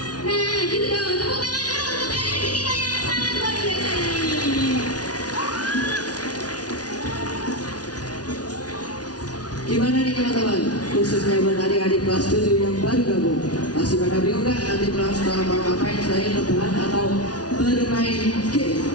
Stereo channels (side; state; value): right; late; 0.69 ms